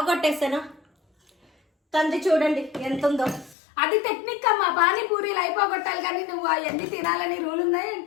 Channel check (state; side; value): drops out; right; at 3.6 s